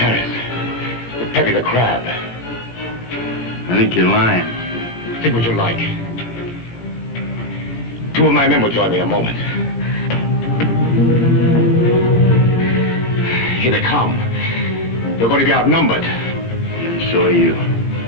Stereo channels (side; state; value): right; late; 17 ms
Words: With Peppy the Crab. I think you're lying. Think what you like. 2 of my men will join me in a moment. Here they come. They're going to be outnumbered. And so are you.